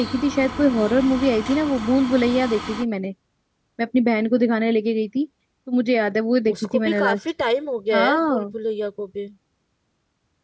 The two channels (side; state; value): both; identical; correlation 1.00